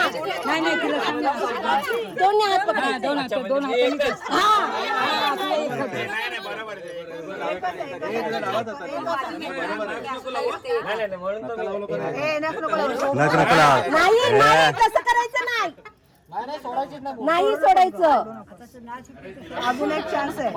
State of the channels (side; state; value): both; identical; correlation 1.00